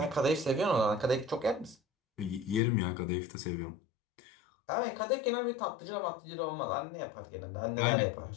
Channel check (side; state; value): right; drops out; at 2.6 s